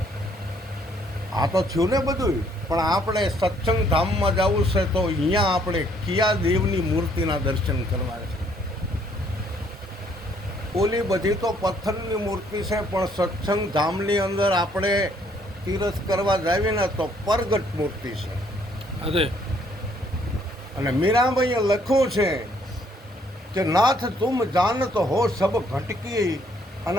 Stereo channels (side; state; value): both; normal; correlation 0.66